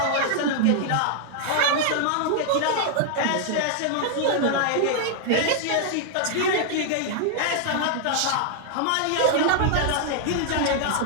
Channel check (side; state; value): both; different; correlation -0.01